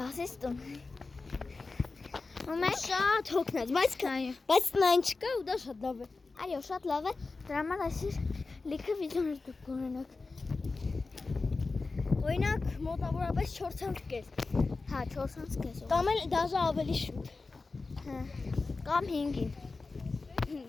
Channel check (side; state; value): right; quieter; 3.9 dB